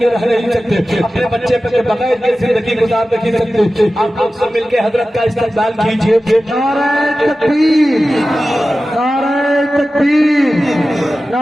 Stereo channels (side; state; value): both; normal; correlation 0.95